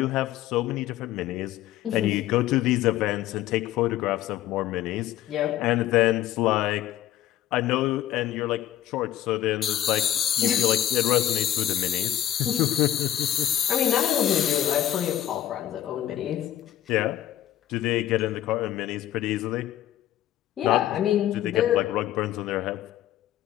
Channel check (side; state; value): right; quieter; 12.4 dB